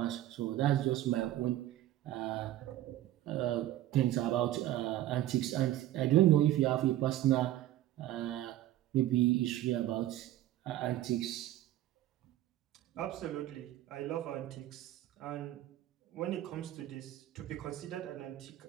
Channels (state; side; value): quieter; left; 13.7 dB